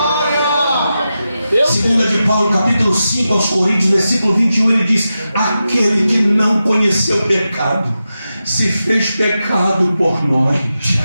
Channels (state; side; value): inverted; both; correlation -0.91